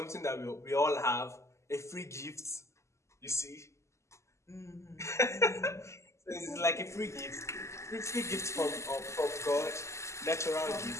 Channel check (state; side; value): late; right; 0.13 ms